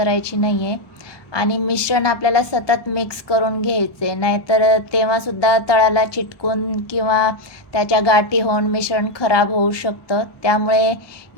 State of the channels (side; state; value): right; late; 1.2 ms